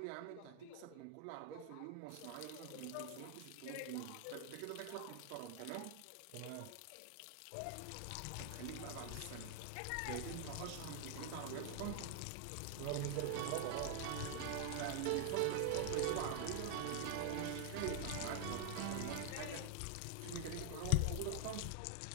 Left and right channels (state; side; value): different; both; correlation 0.00